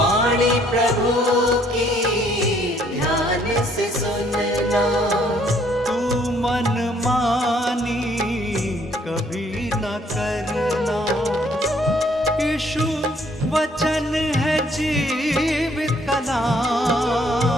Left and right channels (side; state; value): both; normal; correlation 0.64